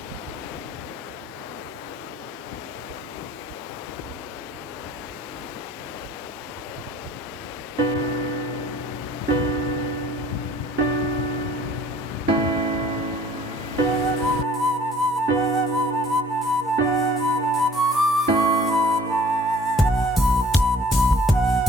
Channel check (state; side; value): normal; both; correlation 0.52